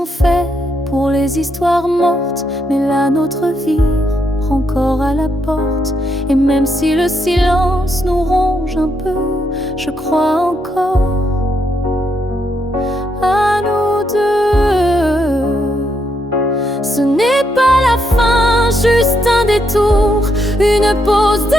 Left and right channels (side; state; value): both; normal; correlation 0.78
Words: faits pour les histoires mortes, mais la nôtre vire encore à la porte. Et même si le silence nous ronge un peu, je crois encore à nous deux. Ce n'est pas la fin, juste un détour, une pause